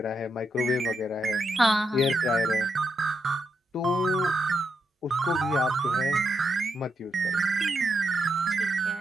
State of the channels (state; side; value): normal; both; correlation 0.82